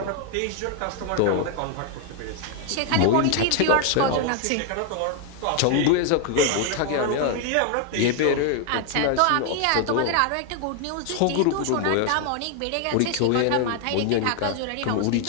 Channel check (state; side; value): different; both; correlation 0.00